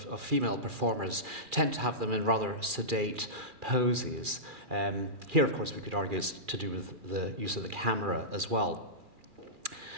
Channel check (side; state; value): left; late; 2.4 ms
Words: female performers tend to have them in rather sedate poses. Here, of course, we could argue it's to do with the use of the camera as well.